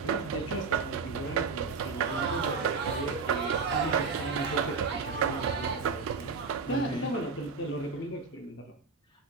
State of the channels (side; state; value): left; quieter; 4.8 dB